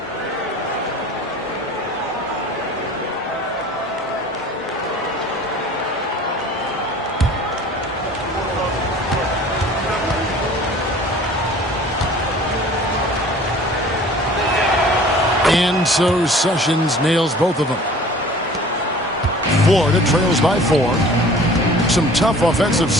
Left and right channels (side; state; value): both; normal; correlation 0.46